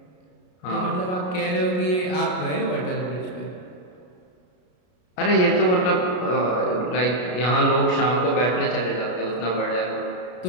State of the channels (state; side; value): late; right; 33 ms